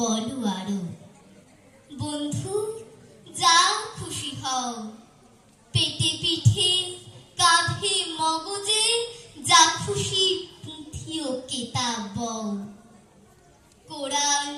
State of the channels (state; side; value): identical; both; correlation 1.00